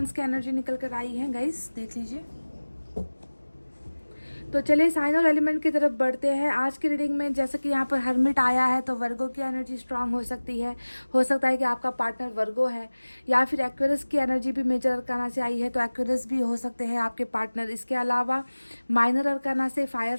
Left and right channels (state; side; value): inverted; both; correlation -1.00